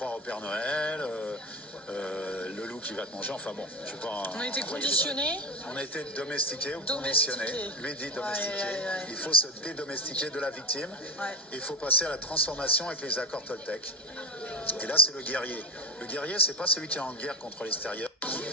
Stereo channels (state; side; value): normal; both; correlation 0.23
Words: au Père Noël, le loup qui va te manger, enfin bon. Je sais pas, on a été conditionnés. On a été domestiqués ou conditionnés. Lui dit domestiqués. Ouais. Il faut se dédomestiquer de la victime. Ouais. Il faut passer à la transformation avec les accords Toltec. Et là c'est le guerrier. Le guerrier, c'est pas celui qui est en guerre contre l'extérieur.